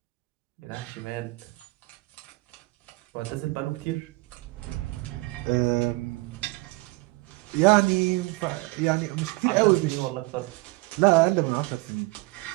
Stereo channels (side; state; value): left; quieter; 22.9 dB